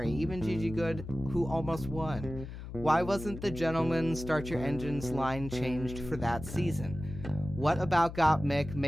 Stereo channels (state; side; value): noise; left; hum, 10 dB below the sound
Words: even Gigi Good, who almost won. Why wasn't the Gentleman Start Your Engines line changed for that season? What about Gottmik